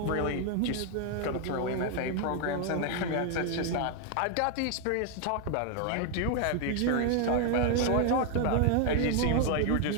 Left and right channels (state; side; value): different; both; correlation 0.00